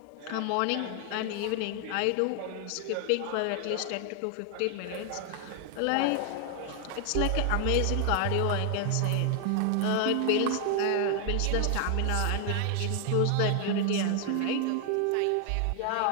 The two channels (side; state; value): both; different; correlation 0.00